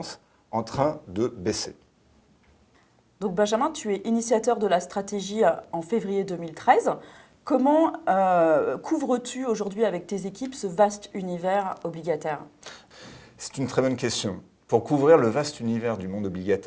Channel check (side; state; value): both; identical; correlation 1.00